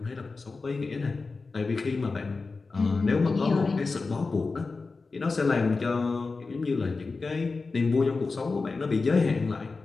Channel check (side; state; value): right; quieter; 4.0 dB